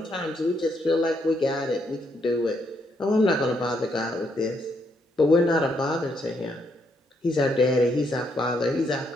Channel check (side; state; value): both; normal; correlation 0.75